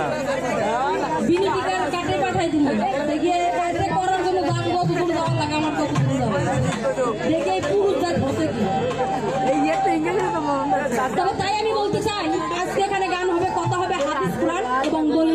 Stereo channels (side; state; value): left; noise; hum, 21 dB below the sound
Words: বিনি টিকার কাটে পাঠাই দিল। দেখে কাটে করার জন্য দাম কত দূর যাওয়ার লাগে, আমার কত দূর যাবে দেখে পুরুষ জাত হতে কি। তবে তাই আমি বলতে চাই, আজকে এখানে গান হবে, কথা হবে হাদিস কোরআন এবং